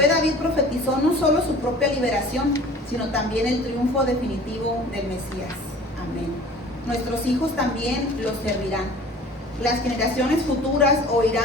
David profetizó no solo su propia liberación, sino también el triunfo definitivo del Mesías. Amén. Nuestros hijos también los servirán. Las generaciones futuras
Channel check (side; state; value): both; normal; correlation 0.46